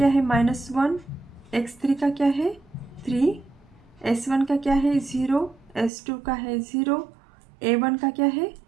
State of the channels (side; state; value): left; drops out; at 5.9 s